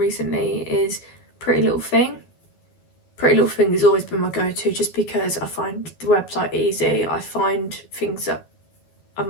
is Pretty Little Thing. Pretty Little Thing has always been my go-to just because I find the website easy. I find things that are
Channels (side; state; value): right; late; 12 ms